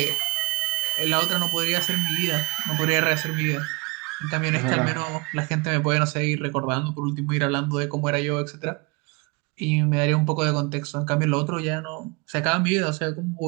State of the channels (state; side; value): quieter; left; 27.9 dB